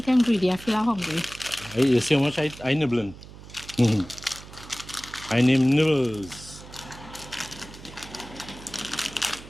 ingredient, I feel hungry. You see how much I nibbling? I name nibbles.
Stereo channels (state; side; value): noise; right; hum, 17 dB below the sound